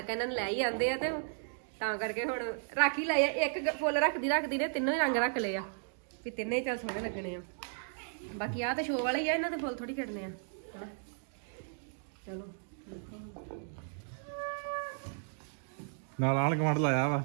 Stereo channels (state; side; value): silent; left; digital silence